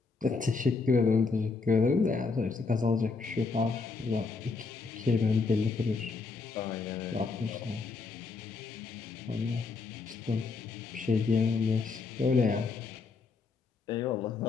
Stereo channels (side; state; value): right; quieter; 4.4 dB